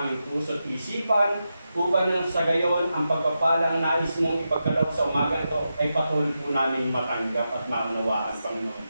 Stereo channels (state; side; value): inverted; both; correlation -0.88